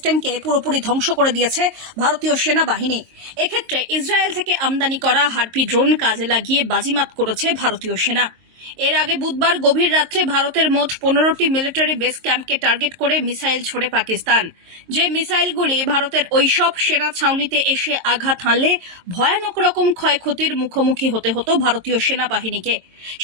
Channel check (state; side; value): late; left; 22 ms